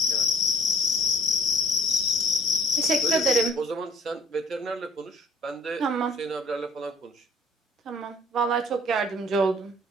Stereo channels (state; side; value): normal; both; correlation 0.51